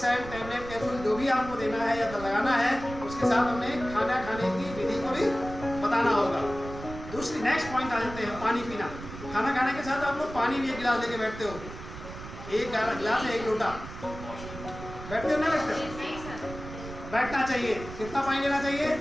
टैबलेट, कैप्सूल जो भी आपको देना है या लगाना है, उसके साथ हमें खाना खाने की विधि को भी बताना होगा। दूसरी नेक्स्ट पॉइंट आ जाते हैं, पानी पीना। खाना खाने के साथ आप लोग पानी भी 1 गिलास लेके बैठते हो, 1 गिलास है 1 लोटा, बैठते हो ना? बैठते हो? बैठना चाहिए। कितना पानी लेना चाहिए?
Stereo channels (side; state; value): right; noise; rumble, 12 dB below the sound